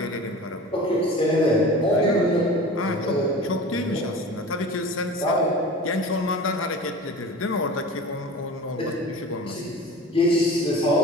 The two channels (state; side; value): normal; both; correlation 0.37